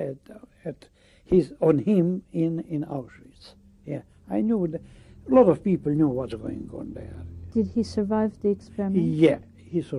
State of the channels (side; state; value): both; identical; correlation 1.00